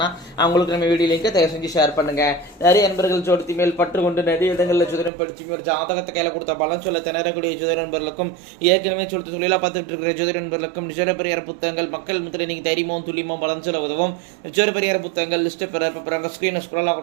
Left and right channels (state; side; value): drops out; left; at 5.1 s